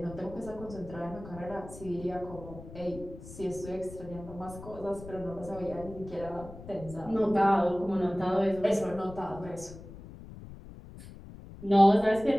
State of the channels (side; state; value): left; noise; rumble, 15 dB below the sound